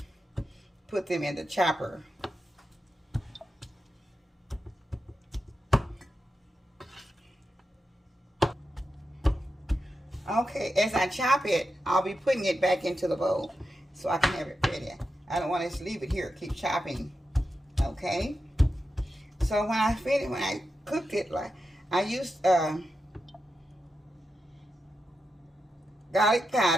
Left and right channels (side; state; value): both; normal; correlation 0.89